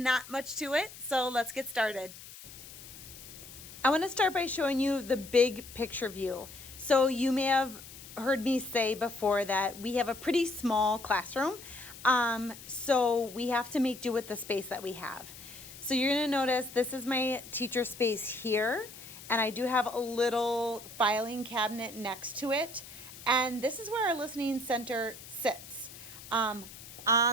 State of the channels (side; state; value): left; noise; hiss, 16 dB below the sound